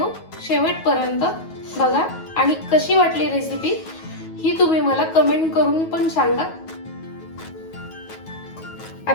शेवटपर्यंत बघा आणि कशी वाटली रेसिपी ही तुम्ही मला कमेंट करून पण सांगा।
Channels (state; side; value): late; right; 9.3 ms